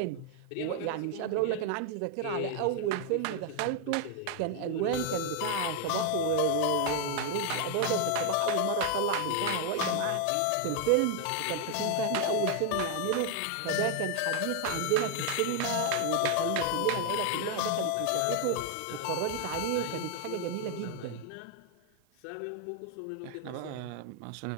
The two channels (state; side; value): different; both; correlation 0.01